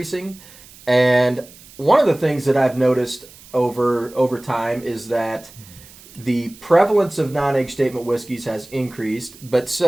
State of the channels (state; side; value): noise; right; hiss, 22 dB below the sound